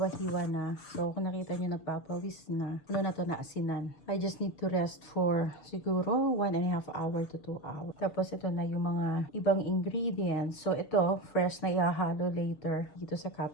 na. So kung nakita nyo, nagpapawis na. Ano na to na asinan. I just need to rest for siguro 1.5 hour to 2 hours. Tapos ito na yung mga ibang ingredients. So ito, fresh na ihahalo later dito sa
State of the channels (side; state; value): right; late; 6.8 ms